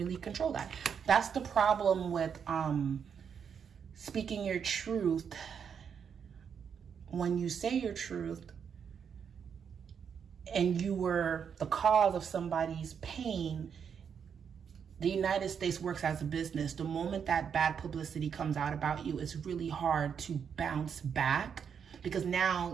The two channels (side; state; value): left; quieter; 7.2 dB